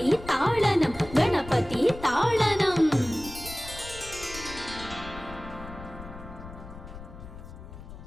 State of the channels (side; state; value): left; noise; rumble, 14 dB below the sound